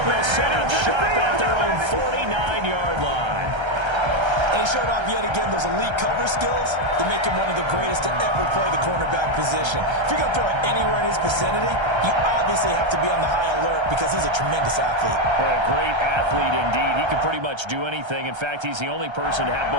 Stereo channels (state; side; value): late; left; 1.3 ms